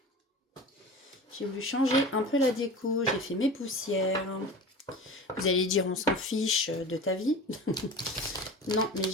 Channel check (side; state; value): both; normal; correlation 0.35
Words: J'ai voulu changer un peu la déco. J'ai fait mes poussières. Vous allez dire, on s'en fiche de ta vie. Non, mais